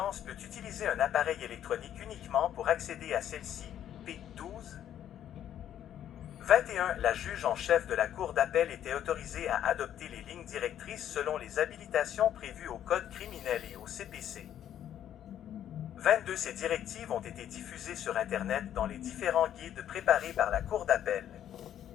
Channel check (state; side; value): quieter; right; 10.6 dB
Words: peut utiliser un appareil électronique uniquement pour accéder à celle-ci, P12. 21. La juge en chef de la Cour d'appel était autorisée à adopter les lignes directrices selon les habilitations prévues au Code criminel et au CPC. 22. Ces directives ont été diffusées sur Internet dans les différents guides préparés par la Cour d'appel.